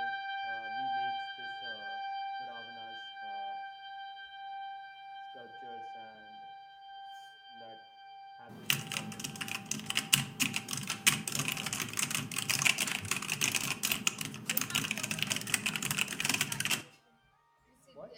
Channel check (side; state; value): both; identical; correlation 1.00